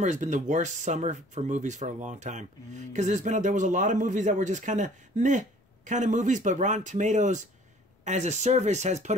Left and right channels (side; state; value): both; normal; correlation 0.53